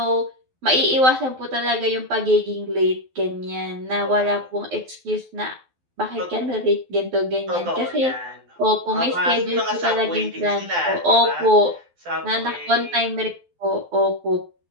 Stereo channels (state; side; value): late; left; 12 ms